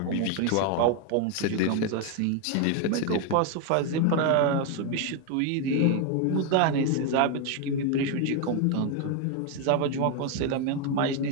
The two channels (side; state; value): both; different; correlation 0.01